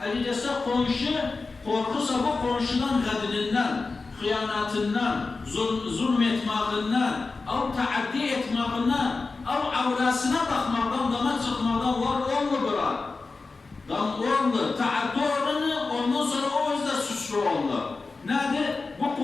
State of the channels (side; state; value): right; quieter; 4.0 dB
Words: Elbette komşu korkusa bu komşudan kadınından, hıyanatından, zulmetmağından, av taaddi etmağından, av avrasına bakmaktan, dama çıkmaktan var olmu bırak. Dam oldu, taaddi oranı ondan sonra o yüzden suçlu oldu. Nedir? Bu